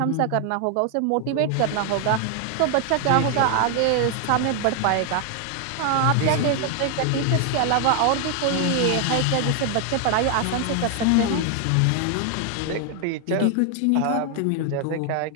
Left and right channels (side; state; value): both; different; correlation 0.00